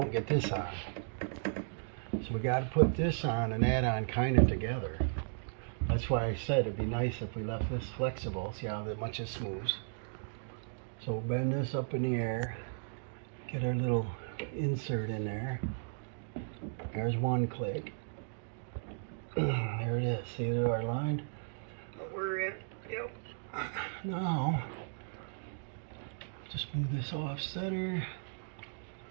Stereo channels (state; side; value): silent; left; digital silence